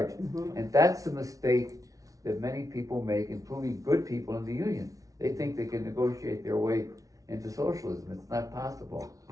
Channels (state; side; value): late; left; 0.17 ms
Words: Mhm. And that's the mistake that many people make, including good people in the union. They think they can negotiate their way into socialism. It's not possible.